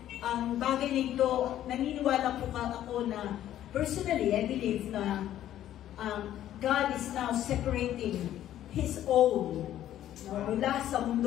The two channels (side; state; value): right; quieter; 12.1 dB